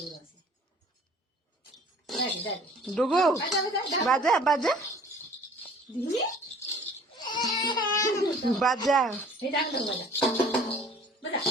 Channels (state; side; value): normal; both; correlation 0.51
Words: ডুগু বাজা বাজা বাজা